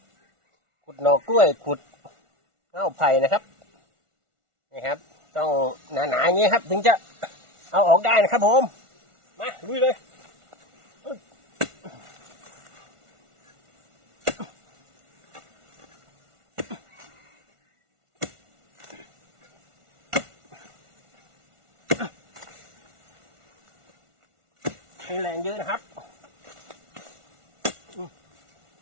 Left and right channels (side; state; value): left; late; 1.4 ms